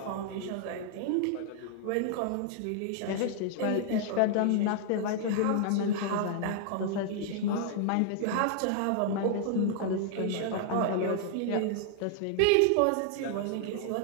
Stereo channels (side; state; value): both; different; correlation 0.00